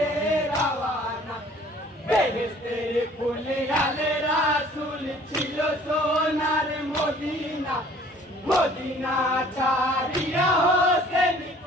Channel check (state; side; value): normal; both; correlation 0.54